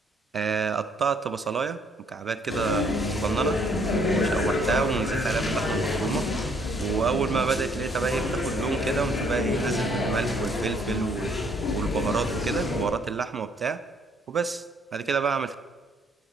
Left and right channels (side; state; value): both; normal; correlation 0.65